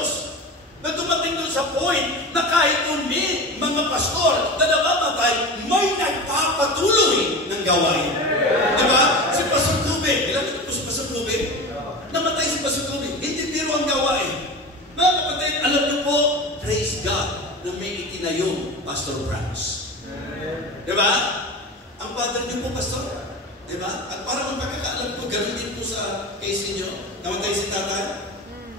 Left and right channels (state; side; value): normal; both; correlation 0.29